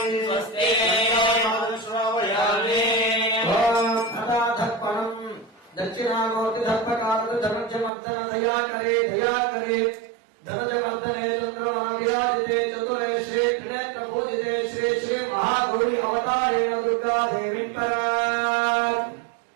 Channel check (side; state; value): left; drops out; at 7.9 s